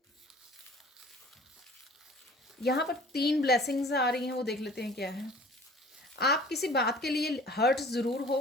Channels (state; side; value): normal; both; correlation 0.48